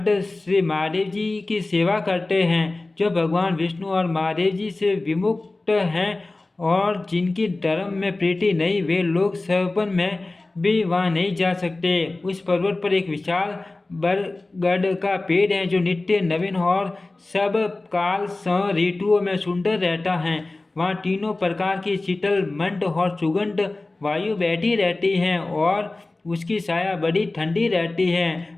श्री महादेव जी की सेवा करते हैं। जो भगवान विष्णु और महादेव जी से विमुक्त हैं और जिनकी धर्म में प्रीति नहीं, वे लोग सपन में भी वहाँ नहीं जा सकते। उस पर्वत पर एक विशाल बरगद का पेड़ है जो नित्य नवीन और सब काल ऋतुओं में सुंदर रहता है। वहाँ तीनों प्रकार की शीतल मंद और सुगंध वायु बैठी रहती है और उसकी छाया बड़ी ठंडी रहती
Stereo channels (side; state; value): right; quieter; 3.1 dB